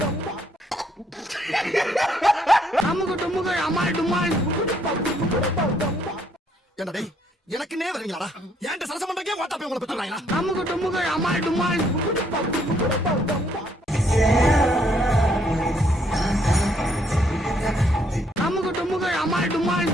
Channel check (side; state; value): both; normal; correlation 0.69